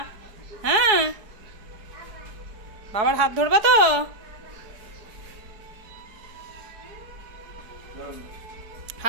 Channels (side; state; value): left; late; 4.7 ms